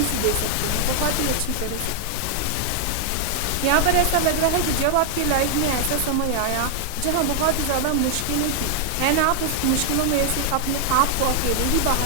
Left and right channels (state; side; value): different; both; correlation 0.00